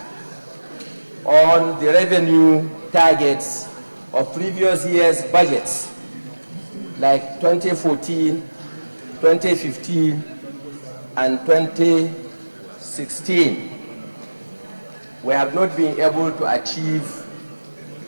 on the revenue targets of previous years' budgets, like 2014, 2015, and 2016, we have not been able to achieve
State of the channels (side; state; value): both; inverted; correlation -1.00